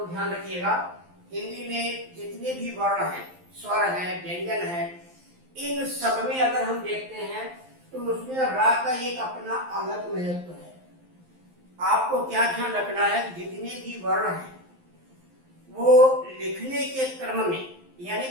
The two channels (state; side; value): late; left; 11 ms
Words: ध्यान रखिएगा, हिंदी में जितने भी वर्ण हैं, स्वर हैं, व्यंजन हैं, इन सब में अगर हम देखते हैं तो उसमें रा का एक अपना अलग महत्व है। आपको क्या ध्यान रखना है, जितने भी वर्ण हैं वो लिखने के क्रम में, यानी